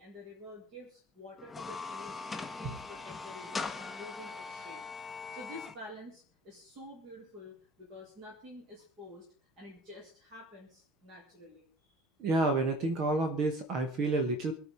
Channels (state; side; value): normal; both; correlation 0.48